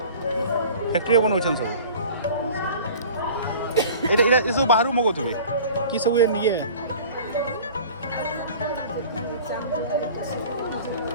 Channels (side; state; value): both; inverted; correlation -0.42